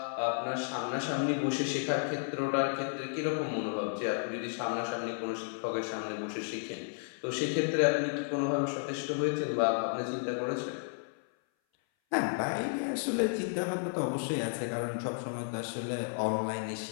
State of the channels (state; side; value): silent; right; 56 dB below the other